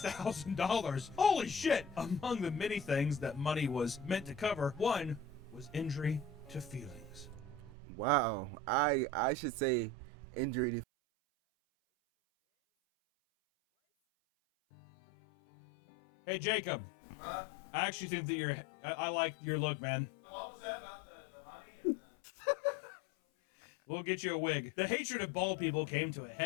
Holy shit! Among the many things that money was meant to cover, one was injury to feelings. Wow. I should say injury to feelings. That 86 bands? What? Hey, Jacob. I actually think that I like your look, man. What was that about the money? We'll get you a wig. The hatred of bald people came to a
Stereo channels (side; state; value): right; drops out; at 10.9 s